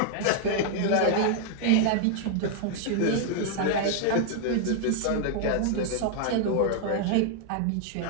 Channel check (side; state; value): both; different; correlation 0.00